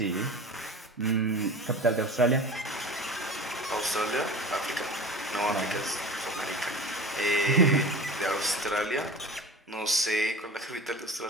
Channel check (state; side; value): normal; both; correlation 0.35